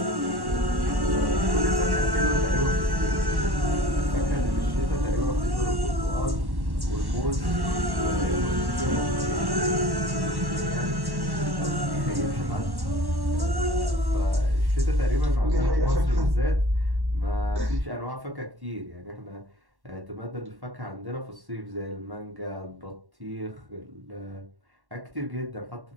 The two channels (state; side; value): late; left; 1.1 ms